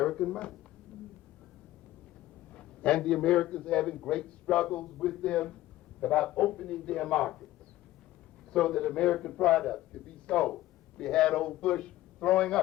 money. And the Americans having great struggles with them about opening their markets so that American products could be sold. We had old Bush throwing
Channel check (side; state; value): right; quieter; 15.5 dB